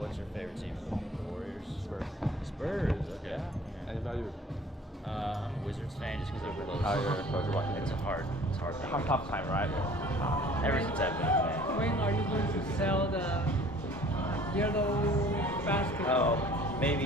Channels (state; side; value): normal; both; correlation 0.51